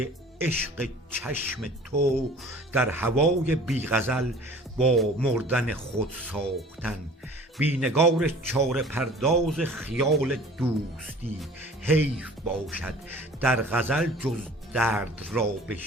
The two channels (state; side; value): normal; both; correlation 0.46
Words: عشق چشم تو، در هوای بی غزل با مردن خود ساختن. بی نگار چاره پرداز خیال دوستی، حیف باشد در غزل جز درد را